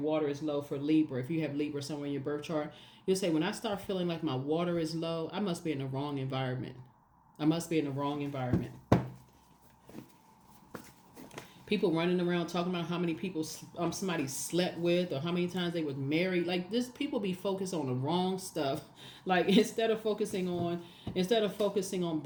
is low for Libra. If you have Libra somewhere in your birth chart, you'll say, when I start feeling like my water is low, I must be in the wrong environment. People running around talking about how many people somebody slept with or how many times they was married. Like this, people be focused on the wrong stuff. Like instead of focusing on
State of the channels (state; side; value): identical; both; correlation 1.00